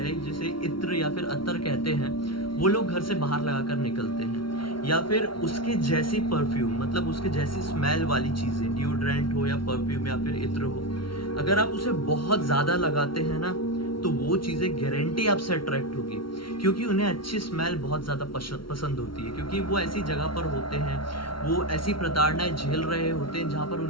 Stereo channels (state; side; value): late; right; 0.74 ms